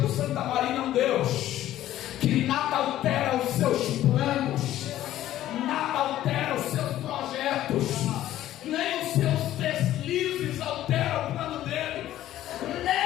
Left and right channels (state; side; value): quieter; right; 13.4 dB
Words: Santa Maria, um Deus que nada altera os seus planos, nada altera os seus projetos, nem os seus deslizes alteram o plano dele,